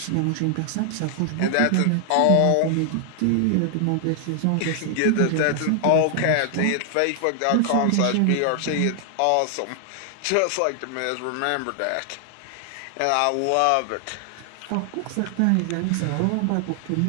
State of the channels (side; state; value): both; different; correlation 0.00